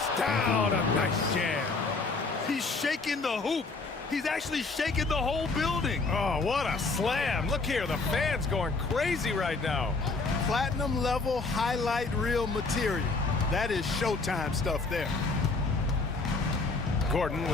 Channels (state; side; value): quieter; right; 3.8 dB